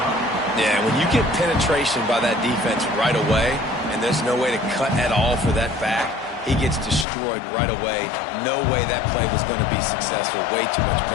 Yeah, when you get penetration by that defense right away, and there's no way to cut at all for that back, he gets destroyed right away. No way that play was going to be successful. Way too much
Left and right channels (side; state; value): right; drops out; at 7.1 s